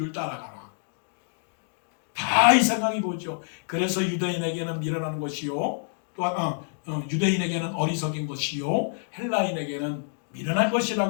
따라가나. 다 이 생각이 보죠. 그래서 유대인에게는 미련한 것이요 또한 유대인에게는 어리석인 것이요 헬라인에게는 미련한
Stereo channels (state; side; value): silent; right; digital silence